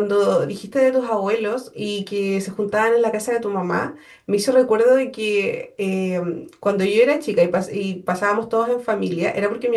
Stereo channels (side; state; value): both; identical; correlation 1.00